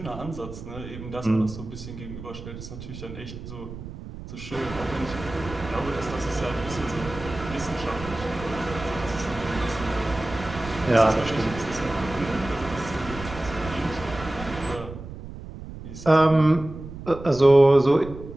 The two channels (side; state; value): right; noise; rumble, 12 dB below the sound